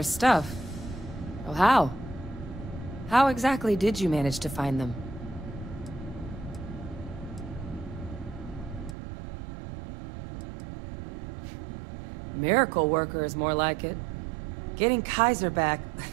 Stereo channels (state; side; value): drops out; left; at 9.0 s